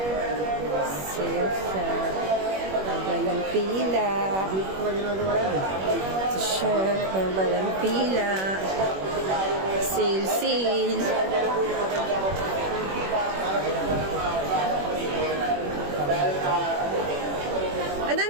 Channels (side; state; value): left; late; 21 ms